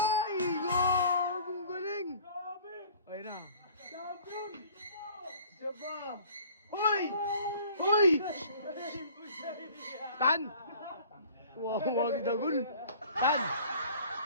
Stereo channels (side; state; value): both; inverted; correlation -0.50